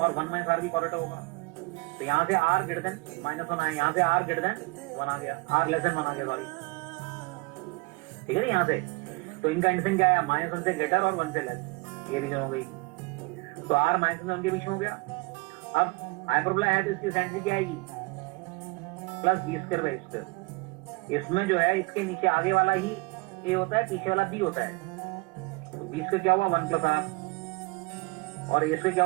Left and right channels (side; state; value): left; quieter; 26.4 dB